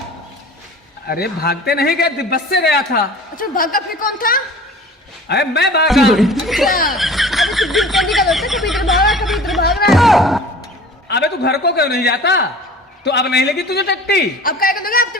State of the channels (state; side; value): normal; both; correlation 0.43